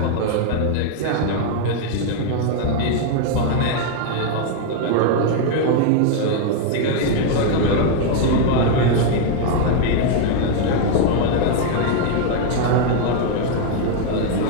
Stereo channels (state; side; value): different; both; correlation 0.00